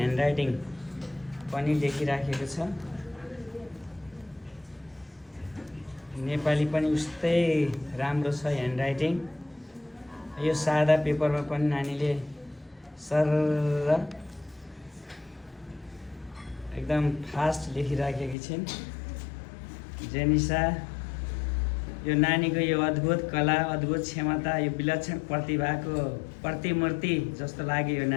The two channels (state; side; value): drops out; right; at 18.4 s